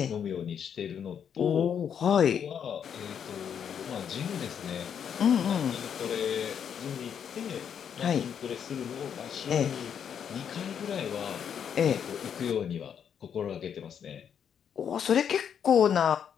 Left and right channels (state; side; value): quieter; right; 8.1 dB